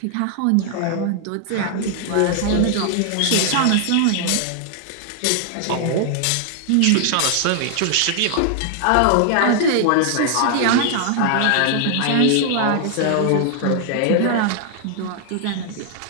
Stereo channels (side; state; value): both; different; correlation 0.00